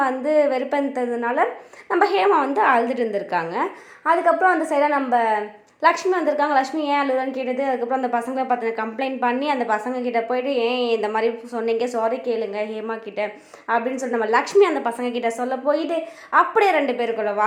வந்து வெறுப்பேற்றதுனால நம்ம ஹேமா வந்து அழுதுட்டு இருந்திருக்காங்க. அதுக்கப்புறம் அந்த சைடாக நம்ம லக்ஷ்மி வந்திருக்காங்க. லக்ஷ்மி ஏன் அழுகுறான்னு கேட்டது. அதுக்கப்புறம் அந்த பசங்களை பார்த்து கம்ப்ளைண்ட் பண்ணி அந்த பசங்க கிட்ட போயிட்டு ஏன் இந்த மாதிரி சொன்னீங்க, சாரி கேளுங்க ஹேமா கிட்ட அப்படின்னு சொல்லி நம்ம லக்ஷ்மி அந்த பசங்க கிட்ட சொல்ல போயிட்டு அப்படியே 2 பேருக்குள்ள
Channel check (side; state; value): both; identical; correlation 1.00